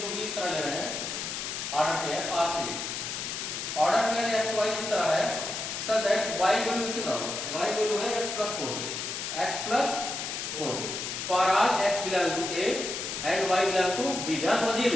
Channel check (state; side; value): noise; left; hiss, 4 dB below the sound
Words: बी इस तरह ले रहे हैं order pair R3, order pair X Y इस तरह है सो दैट y वैल्यू इसके बराबर, y वैल्यू है x plus 4b, x plus 4b for R x belong to a and y belong to b। ध्यान समझिए